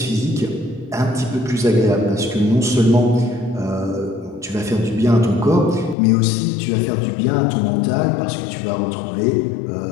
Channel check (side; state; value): right; drops out; at 6.0 s